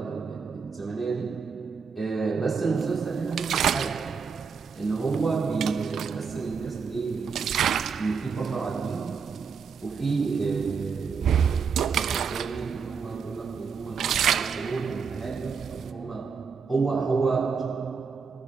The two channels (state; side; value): quieter; left; 5.7 dB